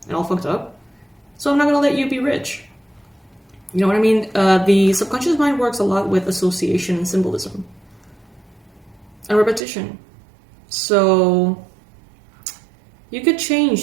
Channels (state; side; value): drops out; left; at 9.6 s